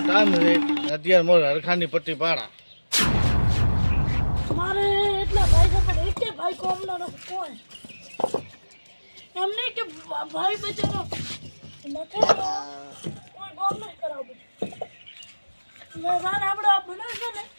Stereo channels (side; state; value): both; inverted; correlation -1.00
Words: ટાઈમ છે અત્યારે મોર હરખાની પટ્ટી પાડા મારે એટલા ભાઈ છે પણ એક ભાઈ કોમનો નથી કોઈ એમને કે ભાઈ બચારો નથી કોઈ કોમ નહીં કરાવું મેં રાન આપણે આ બનાવશે ને